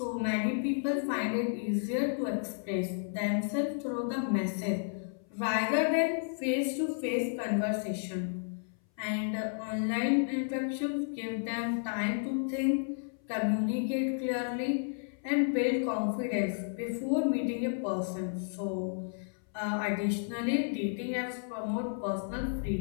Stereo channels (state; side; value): silent; right; 56 dB below the other